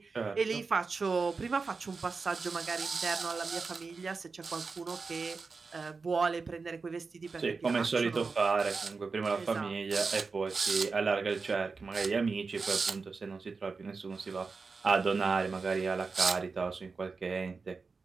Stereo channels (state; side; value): quieter; left; 4.5 dB